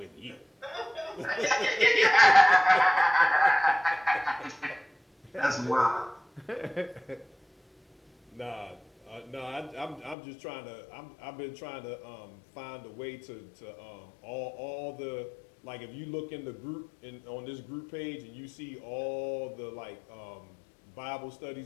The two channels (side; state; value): right; drops out; at 10.2 s